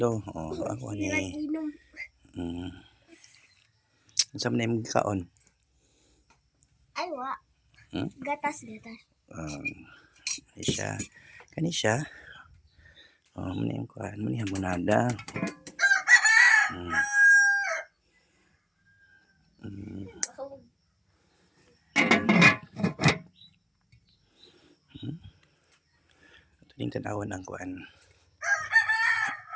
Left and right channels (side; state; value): both; identical; correlation 1.00